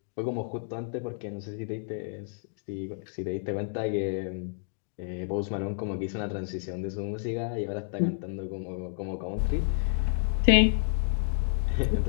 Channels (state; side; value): silent; right; digital silence